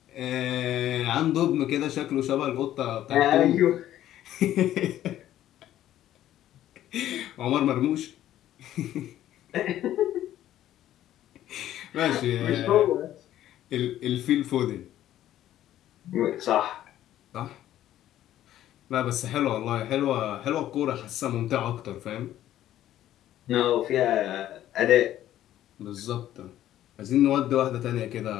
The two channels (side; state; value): right; quieter; 12.7 dB